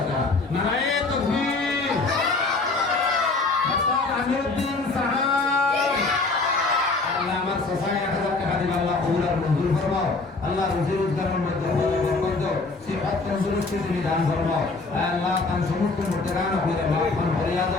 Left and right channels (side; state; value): right; quieter; 3.7 dB